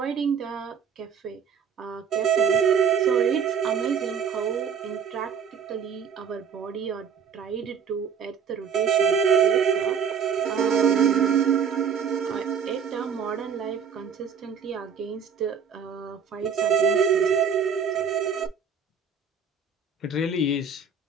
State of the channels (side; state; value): left; quieter; 6.7 dB